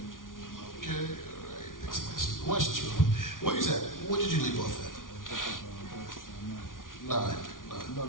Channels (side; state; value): right; late; 0.89 ms